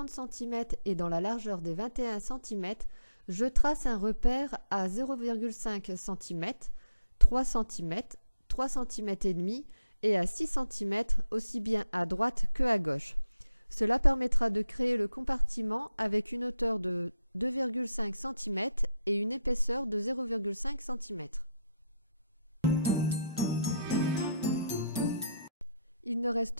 cm et dans la largeur des 21 cm, je trace un repère à 0,5 cm, 3 cm, 3 cm et demi et à 6 cm aussi bien à droite que à gauche. Cela permettra de créer le compartiment avec une hauteur de 2,5 cm et une épaisseur de 0,5 cm. Il ne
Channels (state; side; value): inverted; both; correlation -0.82